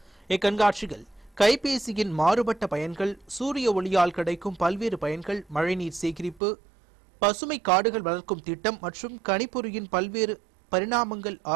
இக்கண்காட்சியில் கைபேசியின் மாறுபட்ட பயன்கள், சூரிய ஒளியால் கிடைக்கும் பல்வேறு பயன்கள், மழைநீர் சேகரிப்பு, பசுமை காடுகள் வளர்க்கும் திட்டம் மற்றும் கணிப்பொறியின் பல்வேறு பரிணாமங்கள்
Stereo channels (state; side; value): drops out; left; at 6.4 s